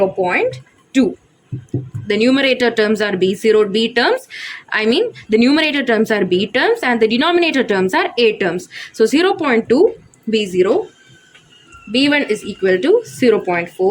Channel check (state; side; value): identical; both; correlation 1.00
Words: The numerator terms are B0 B terms. The numerator terms are B terms and the denominator terms are A terms. So 0.2 B0, B1 is equal to